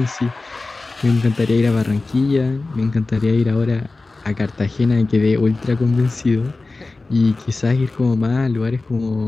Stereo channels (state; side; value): quieter; right; 3.4 dB